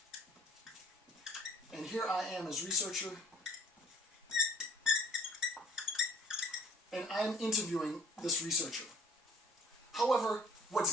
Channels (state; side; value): normal; both; correlation 0.53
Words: and here I am as researcher, and I'm interviewing this researcher. However,